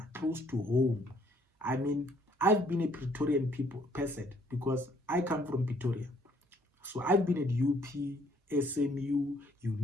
close to home. I mean, I've been a Pretorian person because I come from Pretoria. So I've been at UP, SMU,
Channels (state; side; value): normal; both; correlation 0.64